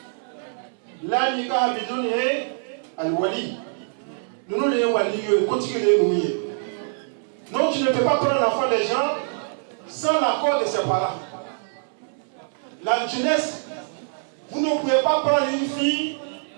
la nikaha bidun al-wali. Nous les wali continuer nous. Donc tu ne peux pas prendre l'enfant des gens sans l'accord de ses parents. La jeunesse, vous ne pouvez pas prendre une fille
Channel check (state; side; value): silent; left; 62 dB below the other